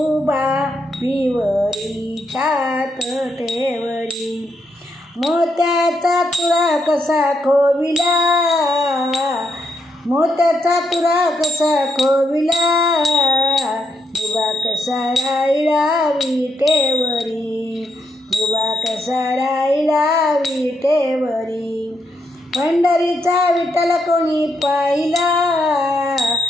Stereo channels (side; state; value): both; normal; correlation 0.79